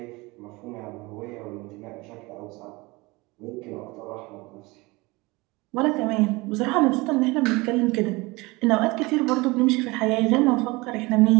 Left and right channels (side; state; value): left; quieter; 23.5 dB